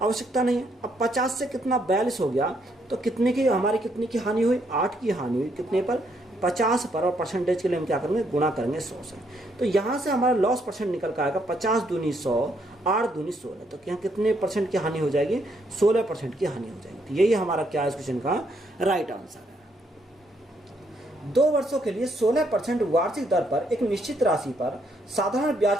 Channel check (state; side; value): normal; both; correlation 0.73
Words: आवश्यकता नहीं है। अब 50 से कितना 42 हो गया, तो कितने की हमारी कितनी की हानि हुई, 8 की हानि हुई, कितने पर 50 पर, और परसेंटेज के लिए हम क्या करेंगे गुणा करेंगे 100 से। तो यहाँ से हमारा लॉस परसेंट निकल कर आएगा 50 दूनी 100, 8 दूनी 16, तो यहाँ कितने परसेंट की हानि हो जाएगी, 16% की हानि हो जाएगी। तो यही हमारा क्या है इस क्वेश्चन का राइट आंसर है। 2 वर्षों के लिए 16% वार्षिक दर पर एक निश्चित राशि पर साधारण